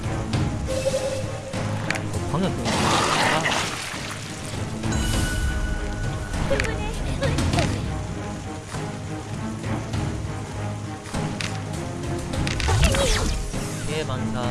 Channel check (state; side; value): identical; both; correlation 1.00